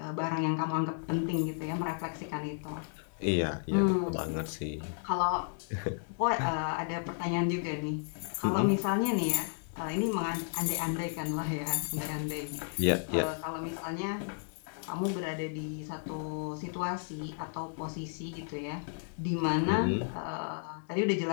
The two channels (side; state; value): right; silent; digital silence